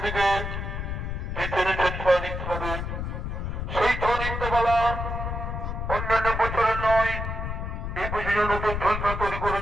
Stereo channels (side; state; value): left; noise; rumble, 4 dB below the sound